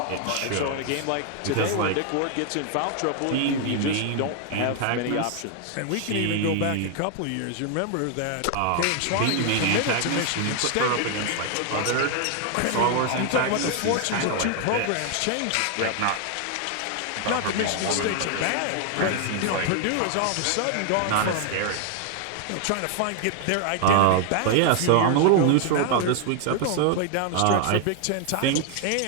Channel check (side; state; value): both; different; correlation 0.00